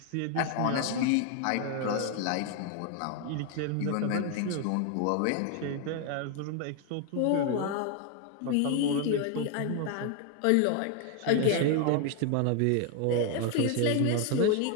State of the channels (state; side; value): different; both; correlation 0.01